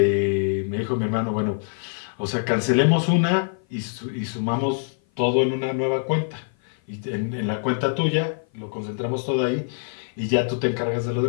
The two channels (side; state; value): right; silent; 56 dB below the other